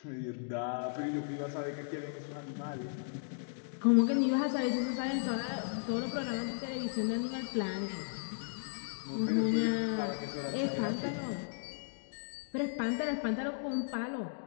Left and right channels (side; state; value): right; silent; digital silence